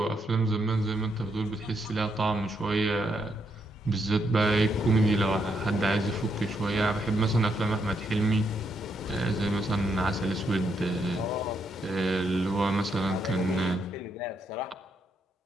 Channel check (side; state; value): both; normal; correlation 0.77